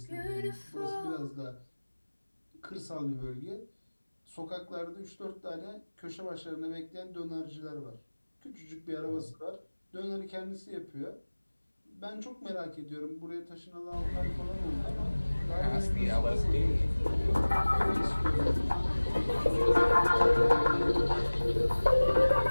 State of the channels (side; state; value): both; inverted; correlation -1.00